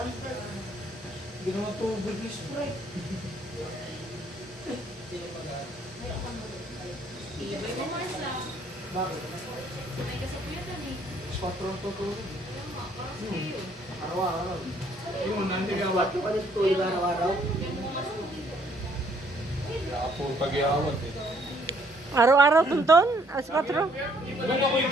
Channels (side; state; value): both; normal; correlation 0.65